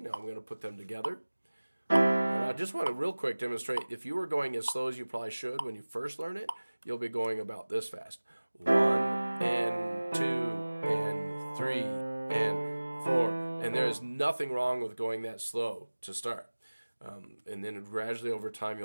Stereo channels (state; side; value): inverted; both; correlation -1.00